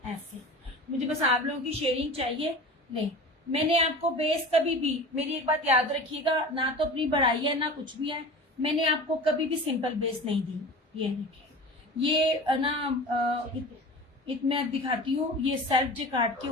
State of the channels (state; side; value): normal; both; correlation 0.35